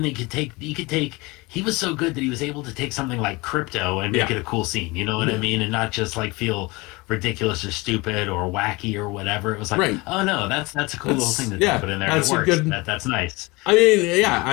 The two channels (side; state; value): right; quieter; 24.1 dB